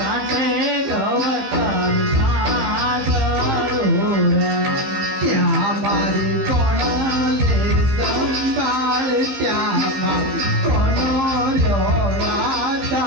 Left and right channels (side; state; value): left; late; 15 ms